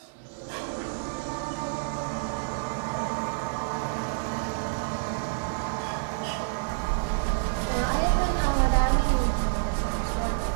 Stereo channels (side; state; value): left; silent; digital silence